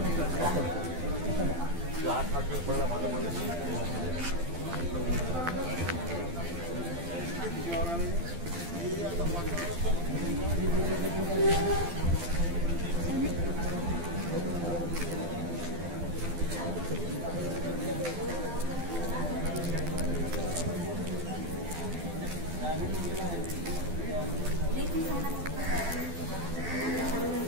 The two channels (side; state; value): left; late; 12 ms